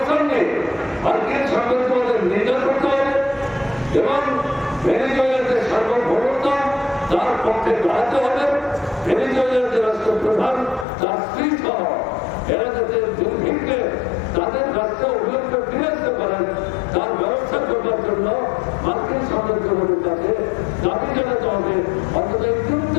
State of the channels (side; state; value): right; drops out; at 10.9 s